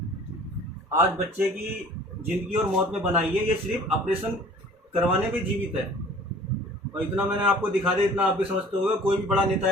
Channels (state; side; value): normal; both; correlation 0.48